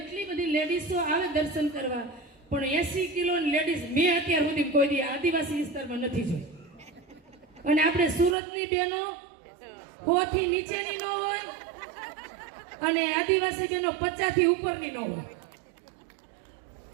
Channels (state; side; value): drops out; left; at 8.3 s